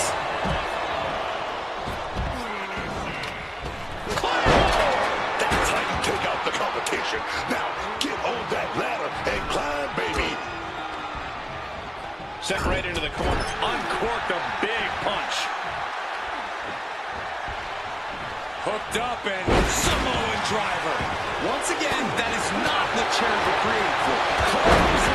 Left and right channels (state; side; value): identical; both; correlation 1.00